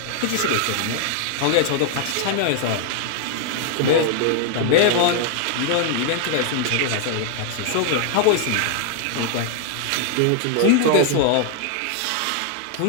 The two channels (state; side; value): different; both; correlation 0.00